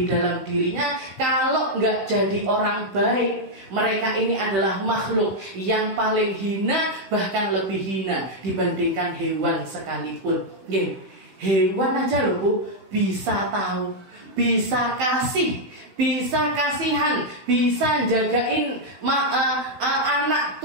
dalam dirinya, kalau nggak jadi orang baik, mereka ini adalah makhluk yang paling hina, bahkan lebih hina dibandingkan hewan sekalipun. Hewan aja loh Bu, bisa tahu, bisa kasih, bisa kasihan, bisa jagain anak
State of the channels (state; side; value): late; left; 15 ms